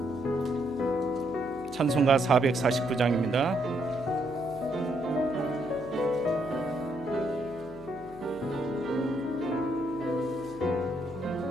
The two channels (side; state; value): right; noise; hum, 22 dB below the sound